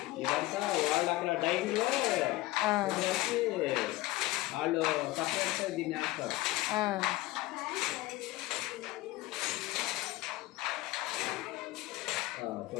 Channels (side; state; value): right; quieter; 18.6 dB